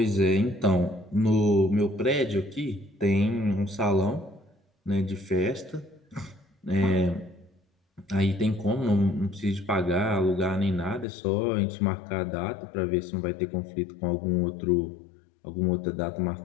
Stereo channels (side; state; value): right; drops out; at 11.1 s